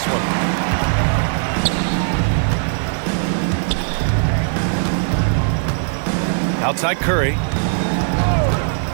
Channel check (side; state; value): left; silent; digital silence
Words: one. Outside Curry.